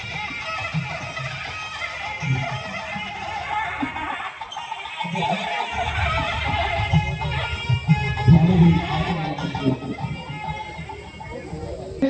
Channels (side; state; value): both; identical; correlation 1.00